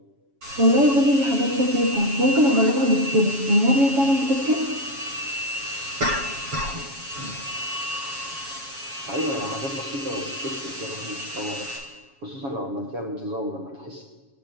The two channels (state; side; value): late; left; 7.2 ms